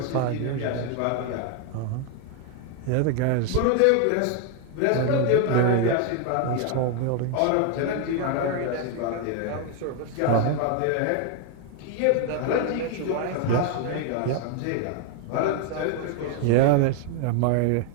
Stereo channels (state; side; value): different; both; correlation 0.01